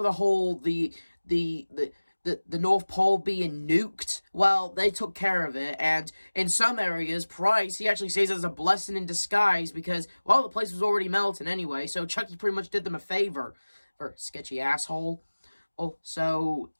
whole, the North Pole being nuked, well, they took care of it. And in some areas, Price, he actually says it's a blessing in disguise, because, well, the place was already melting anyway, so Chucky pretty much did them a favor. For sketchy asshole. Oh, so,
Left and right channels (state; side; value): inverted; both; correlation -1.00